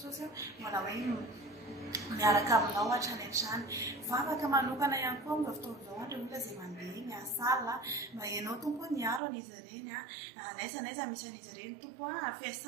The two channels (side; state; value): left; drops out; at 9.2 s